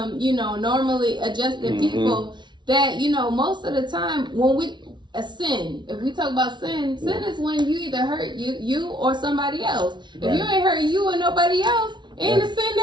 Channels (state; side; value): late; left; 0.22 ms